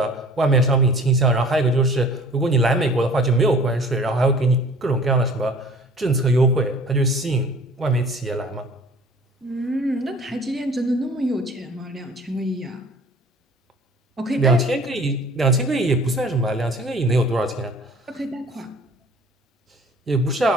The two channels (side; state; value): both; normal; correlation 0.48